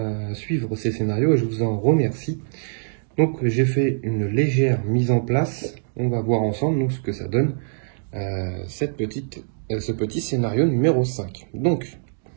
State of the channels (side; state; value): left; silent; digital silence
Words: suivre ces scénarios et je vous en remercie. Donc, j'ai fait une légère mise en place. On va voir ensemble ce que ça donne, ce petit scénario numéro 5. Donc,